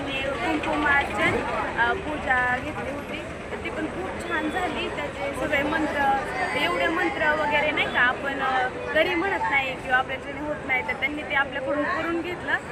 कुंकुमार्चन पूजा घेतली होती, तर ती पण खूप छान झाली. त्याचे सगळे मंत्र, एवढे मंत्र वगैरे नाही का आपण घरी म्हणत नाही किंवा आपल्याच्याने होत नाही, तर त्यांनी ते आपल्याकडून करून घेतलं.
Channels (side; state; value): both; identical; correlation 1.00